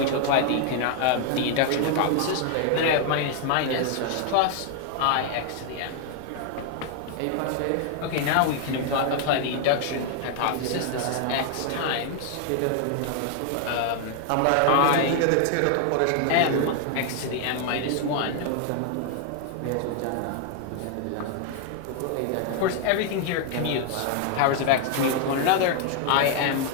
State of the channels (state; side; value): different; both; correlation 0.00